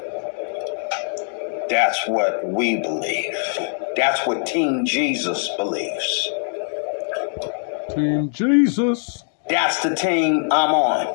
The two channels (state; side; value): silent; right; 64 dB below the other